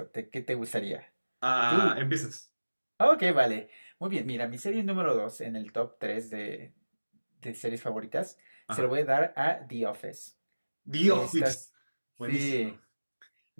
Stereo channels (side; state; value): both; inverted; correlation -1.00